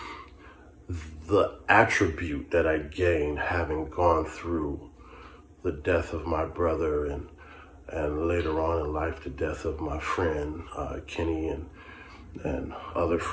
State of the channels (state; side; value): identical; both; correlation 1.00